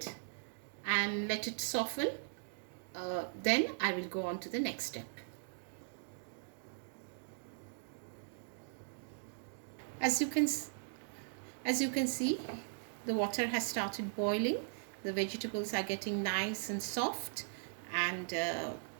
and let it soften. Then I will go on to the next step. As you can see, the water has started boiling. The vegetables are getting nice and soft, and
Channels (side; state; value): left; silent; digital silence